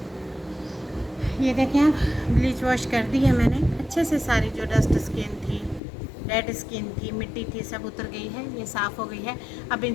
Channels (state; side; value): drops out; right; at 5.8 s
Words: ये देखें आप, ब्लीच वॉश कर दी है मैंने अच्छे से। सारी जो डस्ट स्किन थी, डेड स्किन थी, मिट्टी थी, सब उतर गई है, ये साफ़ हो गई है। अब